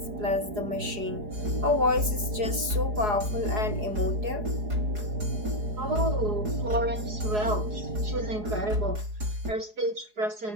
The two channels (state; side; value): late; left; 4.8 ms